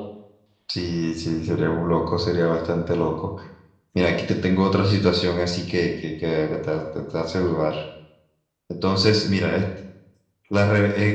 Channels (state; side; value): identical; both; correlation 1.00